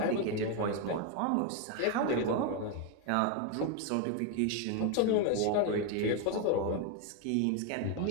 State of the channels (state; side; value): different; both; correlation 0.01